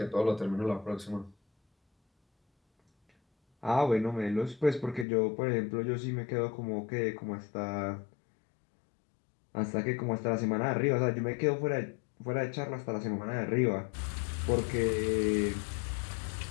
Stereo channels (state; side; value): drops out; right; at 5.1 s